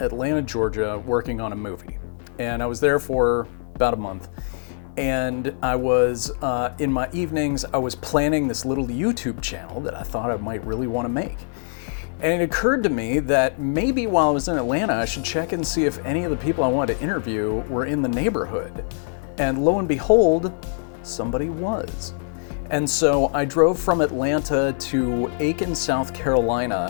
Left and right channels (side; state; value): right; silent; digital silence